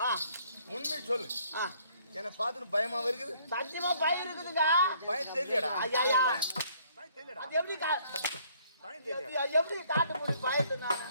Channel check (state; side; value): inverted; both; correlation -0.63